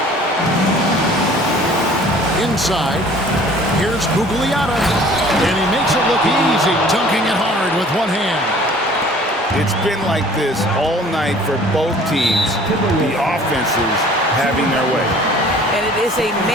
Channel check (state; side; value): normal; both; correlation 0.51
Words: Inside, here's Gugliotta. And he makes it look easy, dunking it hard with one hand. It's been like this all night for both teams. The offenses having their way. And it is a